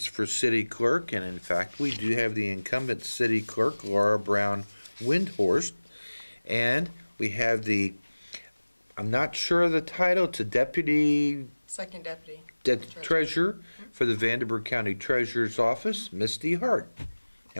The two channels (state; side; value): inverted; both; correlation -1.00